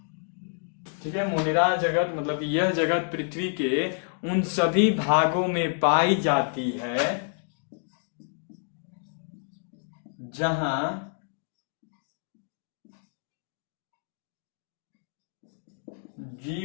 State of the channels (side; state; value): right; silent; 59 dB below the other